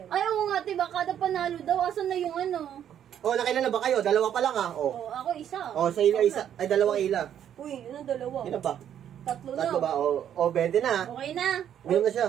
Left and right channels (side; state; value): left; quieter; 9.8 dB